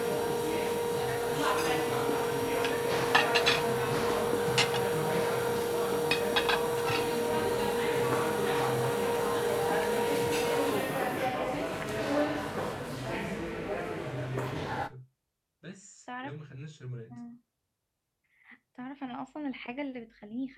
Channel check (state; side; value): identical; both; correlation 1.00